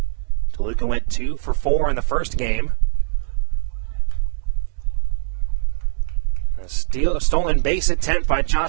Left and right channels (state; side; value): silent; left; digital silence